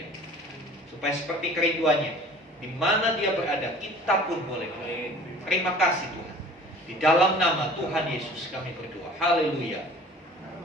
Supaya seperti kerinduannya, di mana Dia berada, kita pun boleh berada. Terima kasih Tuhan. Di dalam nama Tuhan Yesus kami berdoa. Haleluya.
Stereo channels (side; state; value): both; normal; correlation 0.47